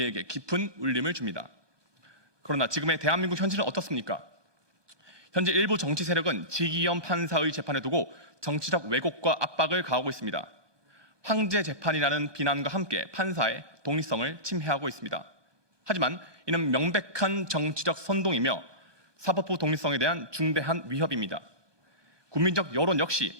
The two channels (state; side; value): late; left; 1.4 ms